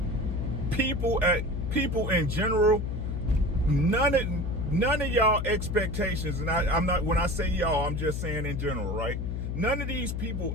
people in general, none of y'all expectations, and I'm not, when I say y'all, I'm just saying in general, right? None of these people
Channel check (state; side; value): noise; left; hum, 3 dB below the sound